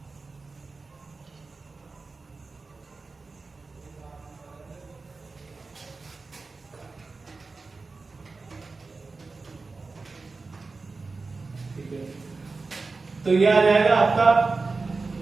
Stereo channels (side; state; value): left; quieter; 4.0 dB